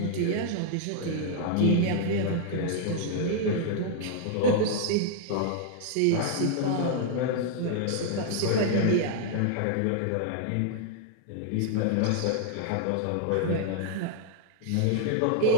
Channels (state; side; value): different; both; correlation 0.00